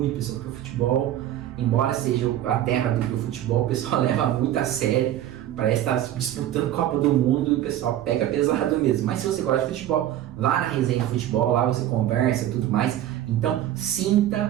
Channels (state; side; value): quieter; left; 12.3 dB